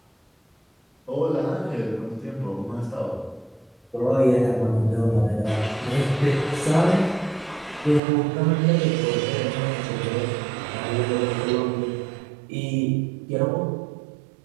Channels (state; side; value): drops out; left; at 8.0 s